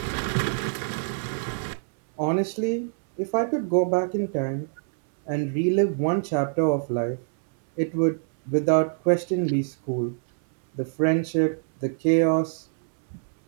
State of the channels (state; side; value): silent; left; 62 dB below the other